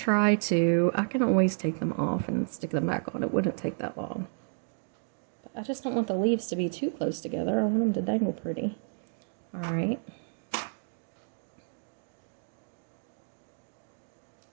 to. I can always take them off and stick them back on. It wouldn't take that long. But I just don't want the leaves to be too close together. I want them to dangle pretty. All right.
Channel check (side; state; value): left; silent; digital silence